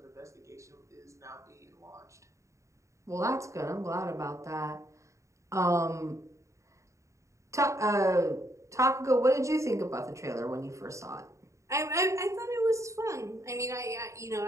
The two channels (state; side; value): late; left; 0.15 ms